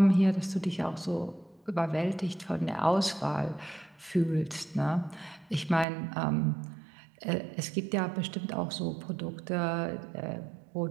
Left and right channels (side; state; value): left; drops out; at 5.9 s